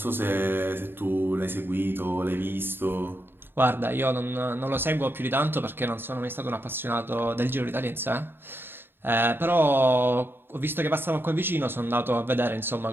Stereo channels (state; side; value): late; left; 0.10 ms